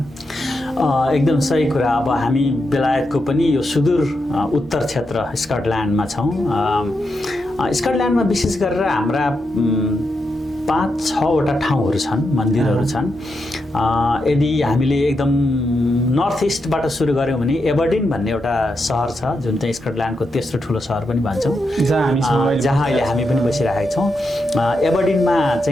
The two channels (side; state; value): both; normal; correlation 0.85